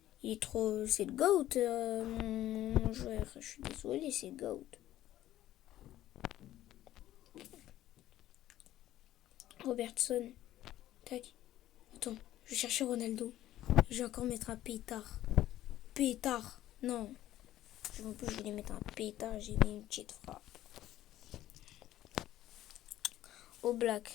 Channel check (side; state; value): right; quieter; 13.7 dB